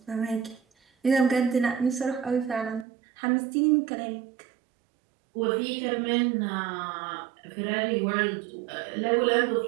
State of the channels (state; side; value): drops out; left; at 2.9 s